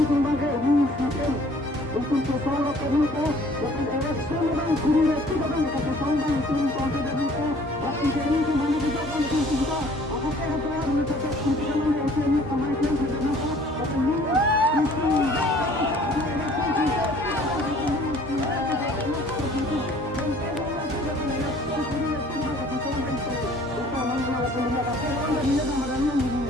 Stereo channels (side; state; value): both; normal; correlation 0.54